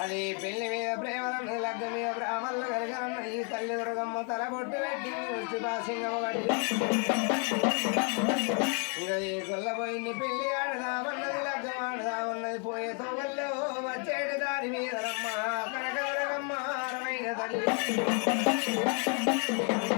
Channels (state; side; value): quieter; right; 38.7 dB